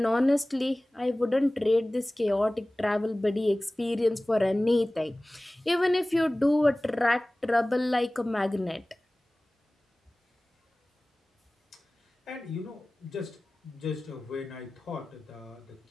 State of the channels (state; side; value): normal; both; correlation 0.98